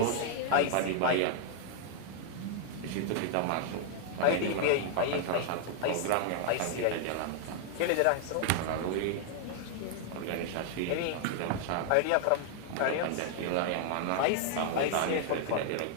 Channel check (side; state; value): both; different; correlation 0.00